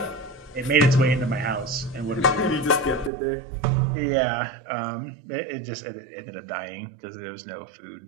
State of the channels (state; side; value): drops out; left; at 3.1 s